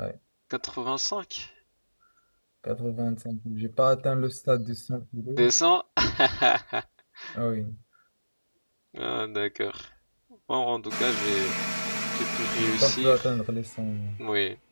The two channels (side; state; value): both; inverted; correlation -1.00